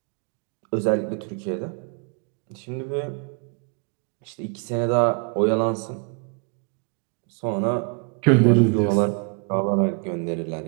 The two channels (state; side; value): quieter; left; 39.2 dB